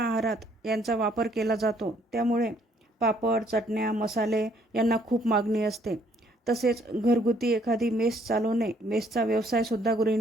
यांचा वापर केला जातो, त्यामुळे पापड, चटण्या, मसाले यांना खूप मागणी असते. तसेच घरगुती एखादी मेस चालवणे, मेसचा व्यवसायसुद्धा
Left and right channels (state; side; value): normal; both; correlation 0.65